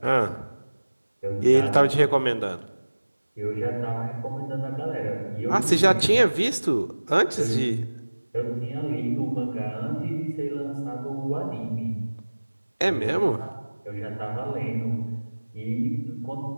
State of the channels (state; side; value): inverted; both; correlation -1.00